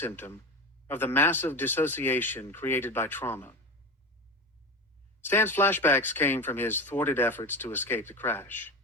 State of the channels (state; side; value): normal; both; correlation 0.25